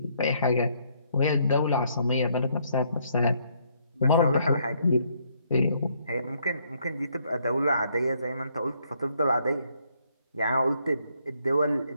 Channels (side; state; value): both; inverted; correlation -0.70